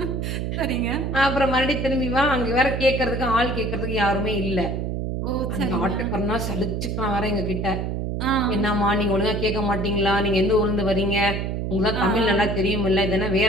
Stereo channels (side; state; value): right; noise; hum, 2 dB below the sound